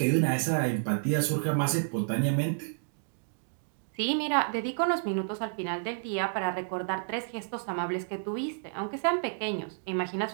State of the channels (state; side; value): silent; left; digital silence